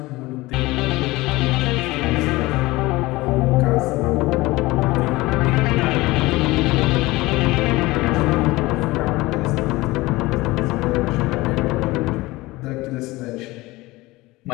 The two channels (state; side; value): quieter; right; 20.3 dB